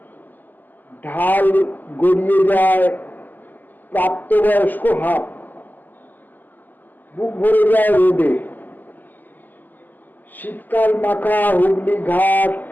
ঢাল গড়িয়ে যায় প্রাপ্তবয়স্ক হাত। বুক ভরে যায় রোদে। শীতকাল মাখা হুগলি ঘাট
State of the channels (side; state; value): right; late; 0.086 ms